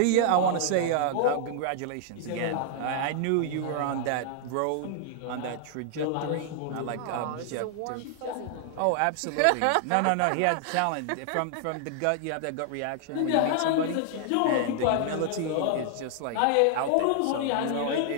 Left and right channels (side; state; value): both; different; correlation 0.00